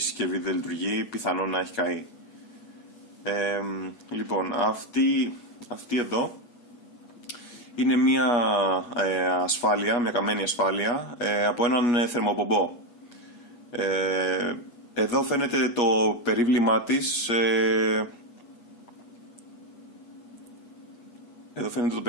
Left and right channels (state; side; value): late; right; 8.3 ms